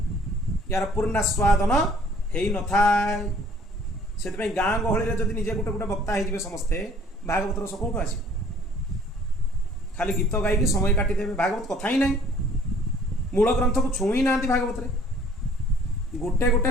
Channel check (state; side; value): normal; both; correlation 0.56